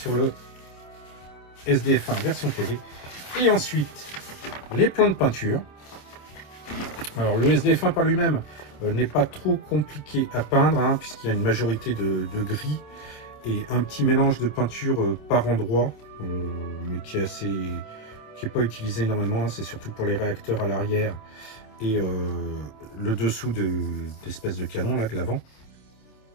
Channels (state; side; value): late; right; 27 ms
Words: le SDF1 version télé. Et ensuite, les plans de peinture. Alors, le SDF1 par lui-même n'est pas trop compliqué à peindre, hein, puisqu'il y a une majorité de gris et un petit mélange de peinture par endroit, mais qui est pas utilisé énormément. Hein, c'est surtout pour les réacteurs à l'arrière et le dessous d'espèces de canon là de l'avant.